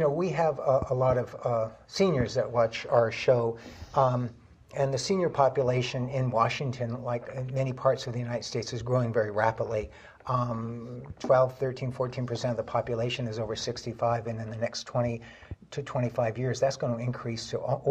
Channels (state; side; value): identical; both; correlation 1.00